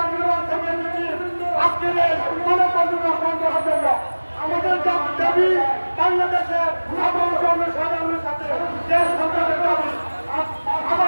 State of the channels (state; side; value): inverted; both; correlation -1.00